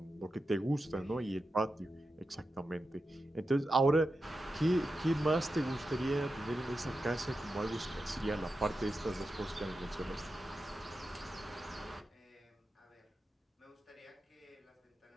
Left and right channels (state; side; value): normal; both; correlation 0.90